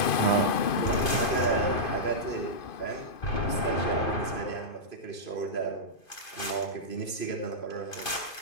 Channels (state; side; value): late; right; 2.5 ms